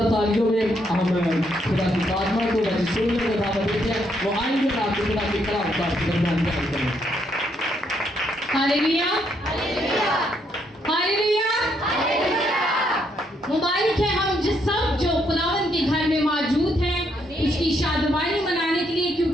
तालियों में हम खुदा की खात्मा को सुनने का दावा देते हैं। वो आएंगे और आपको खुदा की कलाम का दरमियान बयान करेंगे। हालेलुया हालेलुया मुबारक है हम जिस सब जो खुदावंद के घर में मौजूद हैं उसकी शादबानी मनाने के लिए,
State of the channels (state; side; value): normal; both; correlation 0.74